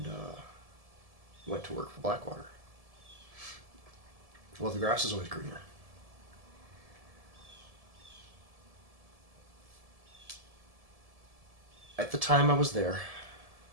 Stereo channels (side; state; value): left; late; 1.7 ms